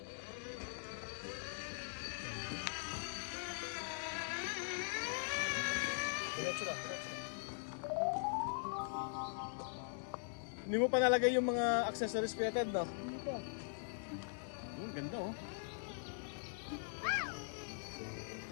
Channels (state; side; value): silent; right; digital silence